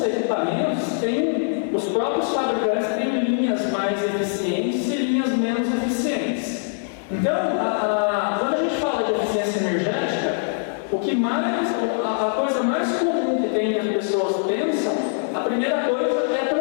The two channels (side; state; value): right; silent; digital silence